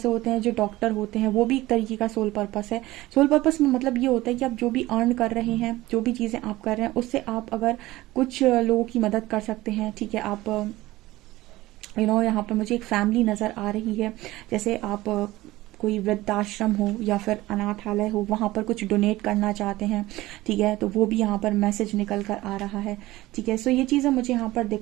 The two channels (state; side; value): quieter; left; 17.8 dB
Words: होते हैं जो डॉक्टर होते हैं, वो भी एक तरीके का सोल पर्पस है। सोल पर्पस में मतलब ये होता है कि आप जो भी अर्न कर रहे हैं, जो भी चीज़ें आप कर रहे हैं, उससे आप अगर कुछ लोगों की मदद कर सकते हैं। ठीक है, आप यहाँ पर मुझे एक फैमिली नज़र आ रही है, जैसे आप कोई वृद्धाश्रम हो या फिर अनाथालय हो, वहाँ पर कुछ डोनेट करना चाहते हैं। ठीक है, तो वो भी यहाँ पर मैसेज निकल कर आ रहा है। ठीक है, सो ये चीज़ें मुझे यहाँ पर